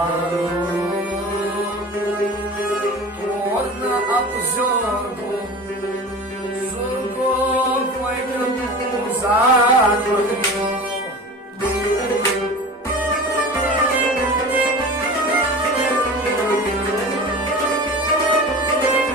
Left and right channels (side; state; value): both; normal; correlation 0.35